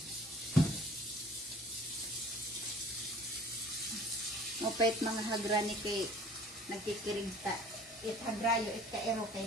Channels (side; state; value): both; normal; correlation 0.50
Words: Mopait mga hagrani kay nagkikirigta. It hagrayo, it kaero